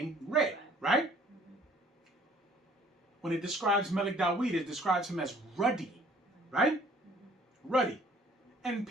Red, right? When it describes Melik Dawid, it describes him as ruddy, right? Ruddy. And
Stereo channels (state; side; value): normal; both; correlation 0.57